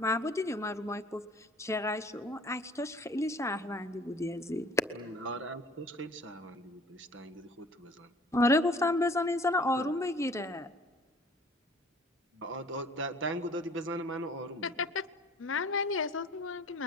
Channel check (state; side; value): normal; both; correlation 0.51